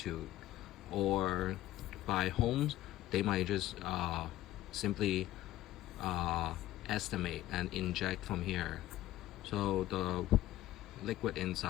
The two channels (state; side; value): quieter; right; 14.6 dB